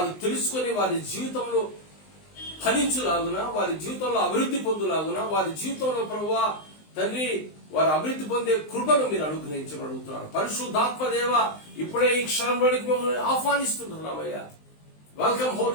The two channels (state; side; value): late; right; 19 ms